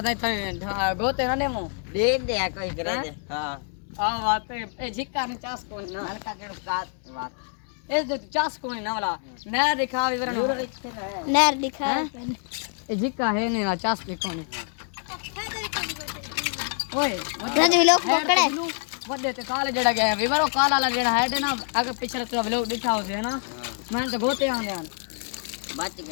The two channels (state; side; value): silent; right; 55 dB below the other